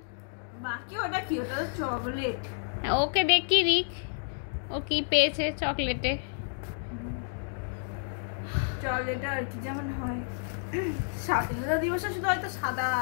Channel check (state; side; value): silent; right; digital silence